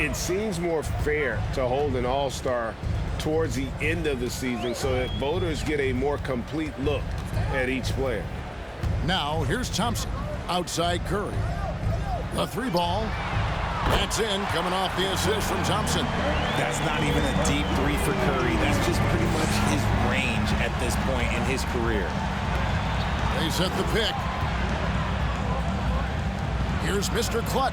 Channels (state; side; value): identical; both; correlation 1.00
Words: seems more fair to hold an All-Star towards the end of the season so that voters get a more complete look at each player. Now, here's Thompson. Outside Curry. The three ball. That's in, coming off the assist from Thompson. That's not even a deep three for Curry. That's just pretty much his range at this point in his career. They set the pick. Here's Mr.